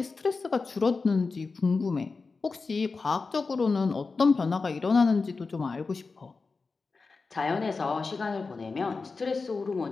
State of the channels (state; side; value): quieter; right; 4.3 dB